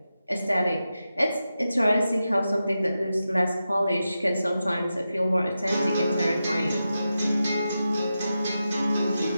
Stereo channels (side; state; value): both; inverted; correlation -0.90